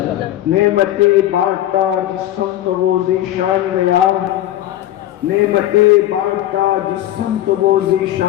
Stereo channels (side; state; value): right; quieter; 13.5 dB